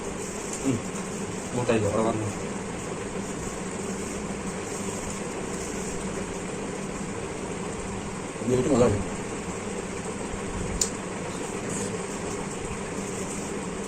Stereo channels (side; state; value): both; identical; correlation 1.00